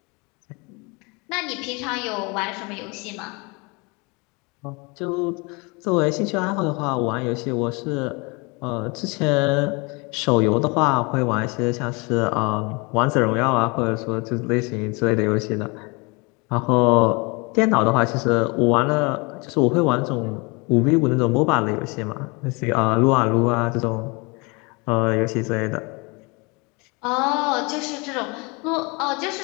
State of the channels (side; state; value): right; quieter; 28.9 dB